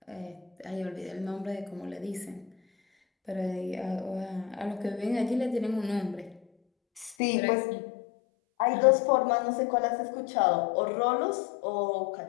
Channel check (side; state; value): right; drops out; at 7.2 s